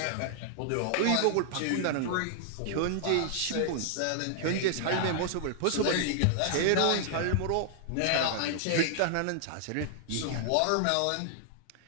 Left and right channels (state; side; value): different; both; correlation -0.01